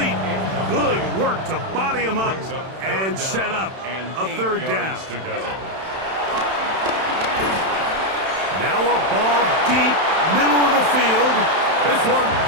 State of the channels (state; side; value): late; left; 31 ms